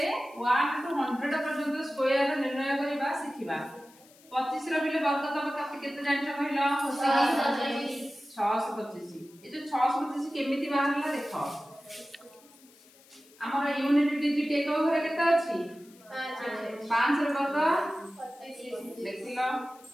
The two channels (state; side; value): noise; left; hiss, 26 dB below the sound